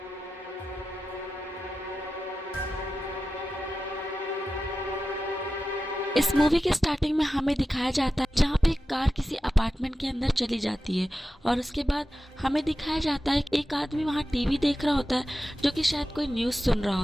इस मूवी के स्टार्टिंग में हमें दिखाया जाता है जहाँ पे एक कार किसी अपार्टमेंट के अंदर चली जाती है और उसके बाद हमें दिखाया जाता है एक आदमी वहाँ टीवी देख रहा होता है जो कि शायद कोई न्यूज़ सुन रहा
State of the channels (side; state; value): both; normal; correlation 0.93